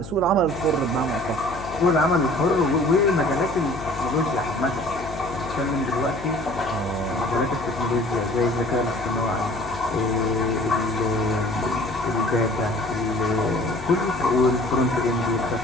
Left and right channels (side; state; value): left; noise; hum, 12 dB below the sound